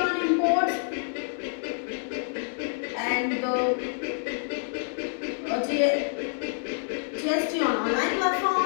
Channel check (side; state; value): right; silent; digital silence